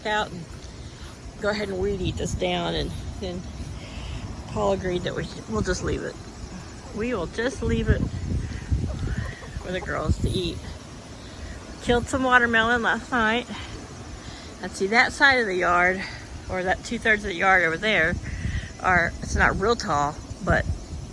out and go ahead and weed eat this down, and then Paul agreed that we'll just leave it. We will just leave it for the girls to eat. Killed some watermelon last night. And see, that side of the yard, or that 2/3 of the yard over there, it's not real tall, but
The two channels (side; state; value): both; identical; correlation 1.00